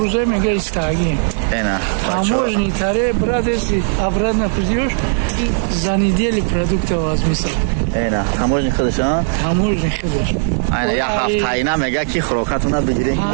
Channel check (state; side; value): silent; left; digital silence